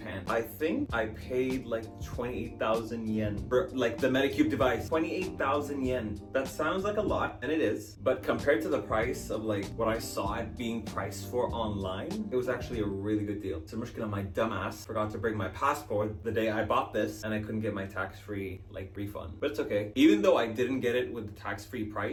I think I paid like 28,000 yen for like the Medicube device. 28,000 yen. That sounds like a lot, and it is. But compared to the price of like what I saw it being priced for online, it was actually a really good deal. So المشكلة, my dumbass forgot to bring my passport the day I bought this, and I couldn't get my tax-free like refund. But it's okay. Even though I didn't get it with the tax-free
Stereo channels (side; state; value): both; identical; correlation 1.00